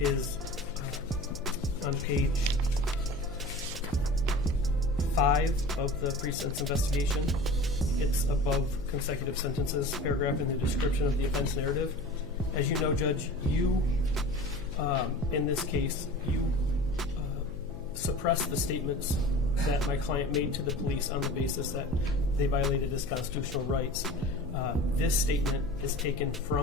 on page 5 of the pre-sentence investigation. It's above consecutive sentences, paragraph in the description of the offense narrative. As you know, Judge, you, in this case, you suppressed the statements that my client made to the police on the basis that they violated his constitutional rights. This statement is taken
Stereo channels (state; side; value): noise; left; hum, 13 dB below the sound